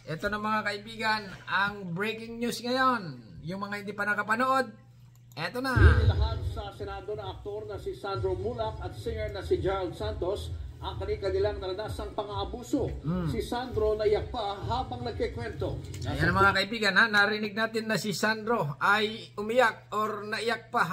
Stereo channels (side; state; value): both; identical; correlation 1.00